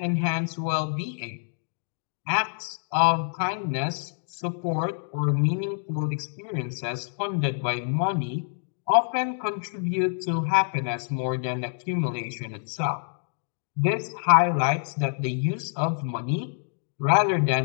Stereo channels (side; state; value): right; silent; digital silence